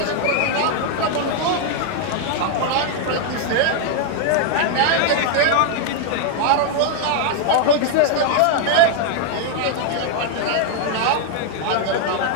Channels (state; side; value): different; both; correlation 0.00